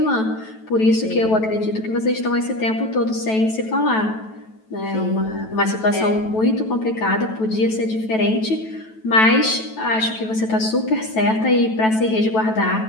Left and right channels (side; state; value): right; late; 9.2 ms